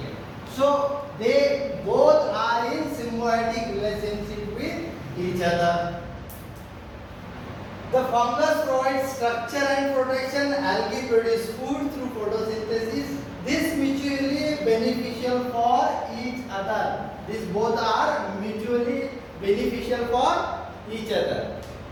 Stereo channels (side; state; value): both; identical; correlation 1.00